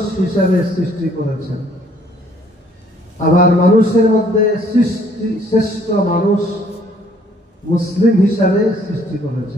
হিসাবে সৃষ্টি করেছেন। আবার মানুষের মধ্যে শ্রেষ্ঠ মানুষ মুসলিম হিসাবে সৃষ্টি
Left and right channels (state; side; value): normal; both; correlation 0.62